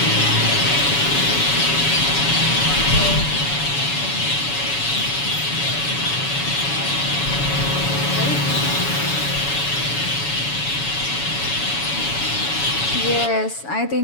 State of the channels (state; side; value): late; right; 7.1 ms